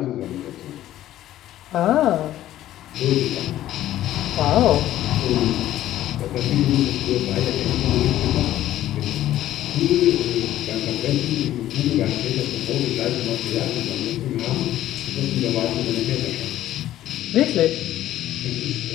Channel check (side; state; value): right; quieter; 13.4 dB